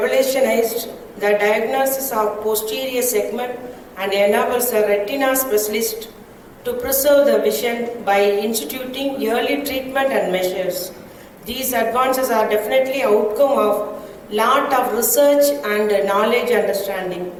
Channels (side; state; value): both; identical; correlation 1.00